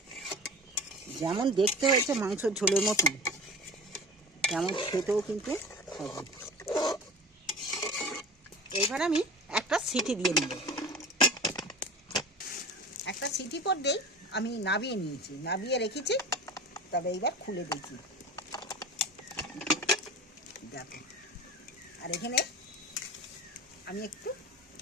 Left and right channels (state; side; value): normal; both; correlation 0.35